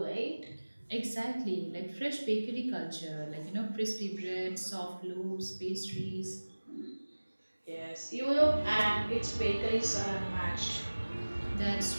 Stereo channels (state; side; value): inverted; both; correlation -1.00